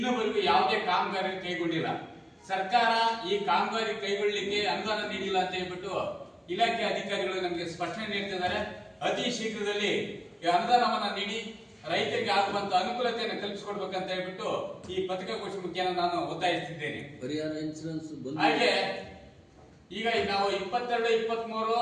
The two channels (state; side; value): identical; both; correlation 1.00